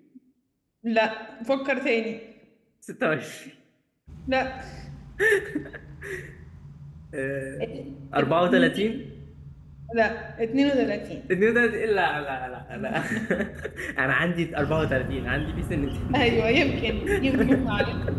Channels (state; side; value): identical; both; correlation 1.00